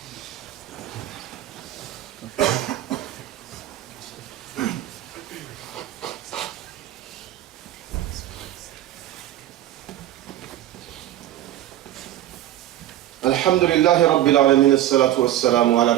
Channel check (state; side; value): quieter; left; 13.1 dB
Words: الحمد لله رب العالمين الصلاة والسلام